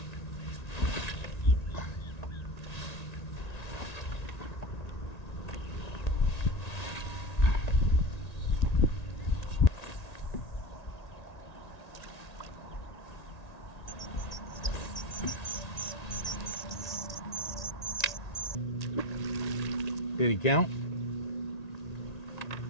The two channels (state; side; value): late; right; 1.8 ms